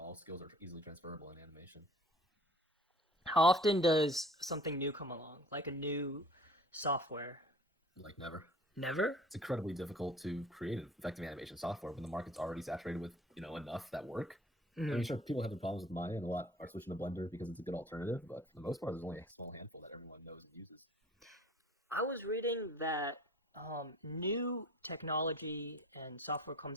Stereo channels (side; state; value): both; normal; correlation 0.47